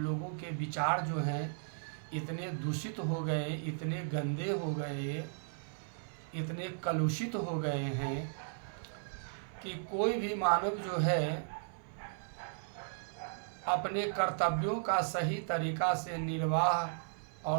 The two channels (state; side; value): silent; left; 54 dB below the other